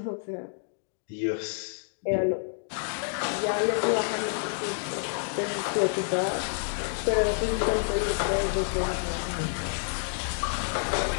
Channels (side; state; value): right; silent; digital silence